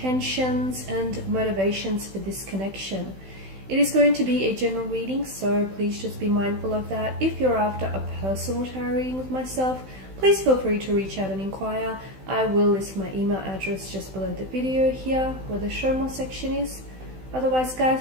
and motivations for this connection. It is going to be a general reading, so please just be mindful of that. If you're after a personal tarot reading with myself, please feel free to reach out and inquire. I will list my email address just below the video here where the show more section is. Otherwise, guys,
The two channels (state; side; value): late; left; 16 ms